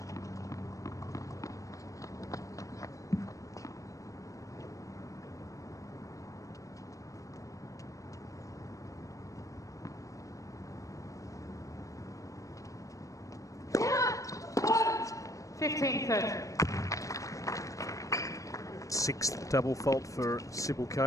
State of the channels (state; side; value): late; right; 0.16 ms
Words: Sixth double fault for